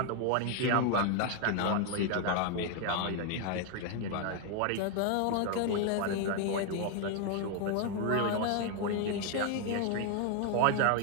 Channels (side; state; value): both; different; correlation 0.00